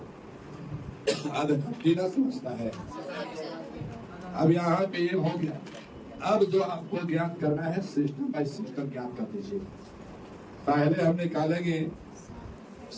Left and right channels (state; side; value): identical; both; correlation 1.00